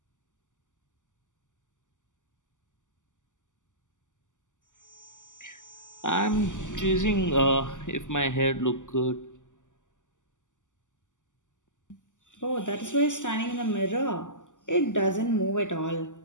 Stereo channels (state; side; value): late; right; 0.87 ms